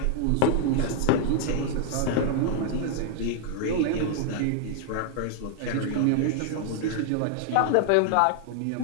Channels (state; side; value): different; both; correlation 0.00